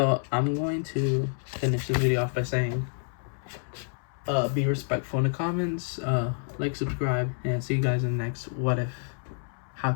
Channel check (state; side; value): silent; right; 59 dB below the other